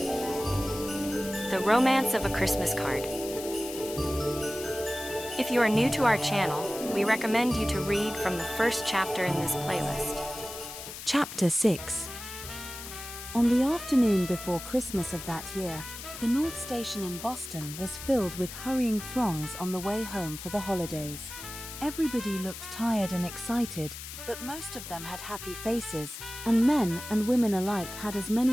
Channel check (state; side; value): noise; left; hiss, 11 dB below the sound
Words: The Romance of a Christmas Card. If you are new to our channel, we recommend you to read from the first chapter in this playlist. Chapter 6. On the afternoon before Christmas of that year, the North Station in Boston was filled with hurrying throngs on the way home for the holidays. Everybody looked tired and excited, but most of them had happy faces, and men and women alike had as